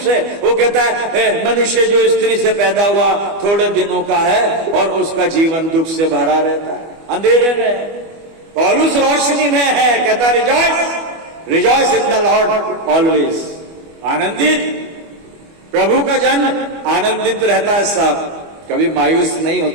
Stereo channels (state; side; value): late; left; 25 ms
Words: वो कहता है मनुष्य जो स्त्री से पैदा हुआ थोड़े दिनों का है और उसका जीवन दुख से भरा रहता है, अंधेरे में। पौलुस रोशनी में है, कहता rejoice in the Lord always, आनंदित। प्रभु का जन आनंदित रहता है साहब, कभी मायूस नहीं